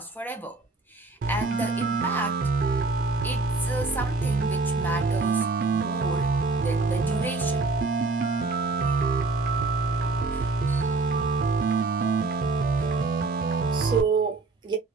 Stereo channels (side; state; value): left; quieter; 3.7 dB